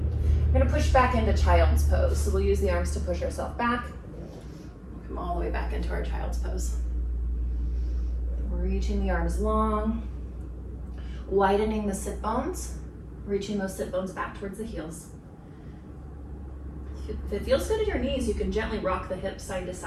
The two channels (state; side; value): identical; both; correlation 1.00